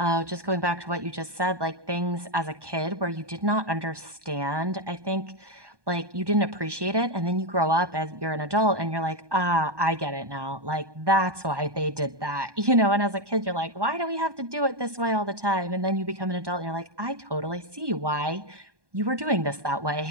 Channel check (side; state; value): left; late; 1.2 ms